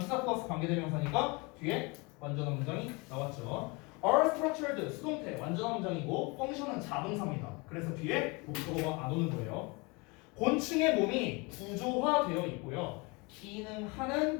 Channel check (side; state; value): right; quieter; 27.6 dB